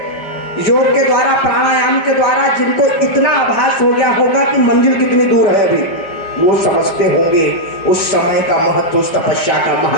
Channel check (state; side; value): late; right; 5.1 ms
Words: योग के द्वारा, प्राणायाम के द्वारा जिनको इतना आभास हो गया होगा कि मंजिल कितनी दूर है अभी, वो समझते होंगे उस समय का महत्व, उस तपस्या का